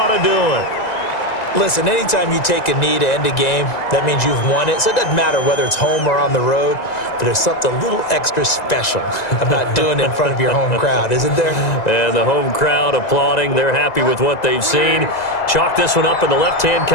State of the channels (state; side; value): late; right; 2.0 ms